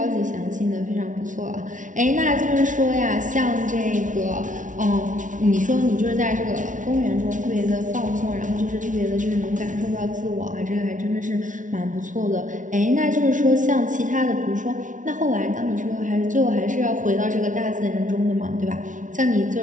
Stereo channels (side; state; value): left; late; 0.37 ms